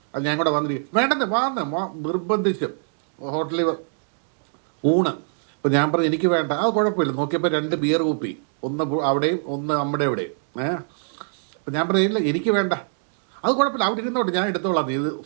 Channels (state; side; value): silent; left; digital silence